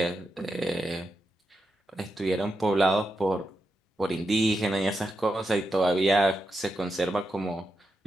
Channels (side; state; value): both; normal; correlation 0.87